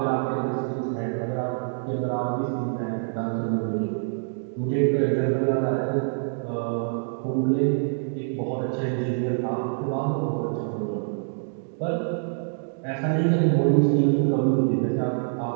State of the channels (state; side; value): silent; left; digital silence